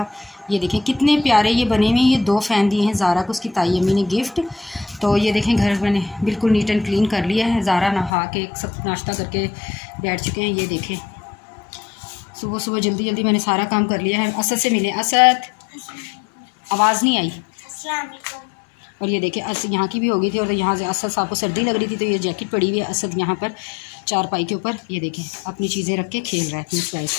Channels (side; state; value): right; drops out; at 8.1 s